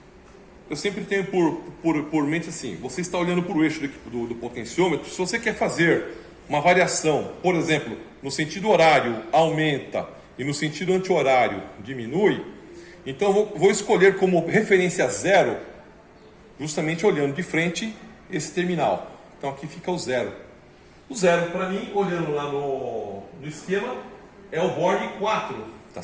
Eu sempre tenho por mente assim: você está olhando para o eixo do potenciômetro. Se você quer fazer uma variação, por exemplo, no sentido horário aumenta e no sentido anti-horário diminui, então eu vou escolher como referência 0, justamente olhando de frente esse terminal. Então aqui fica o 0. O 0 para mim, olhando lá no esquema, é o Borne 4, tá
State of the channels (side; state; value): both; identical; correlation 1.00